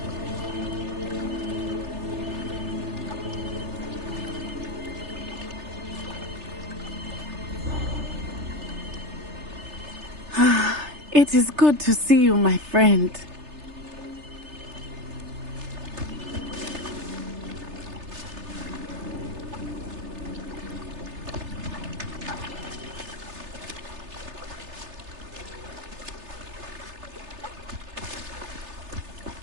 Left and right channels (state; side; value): late; left; 3.3 ms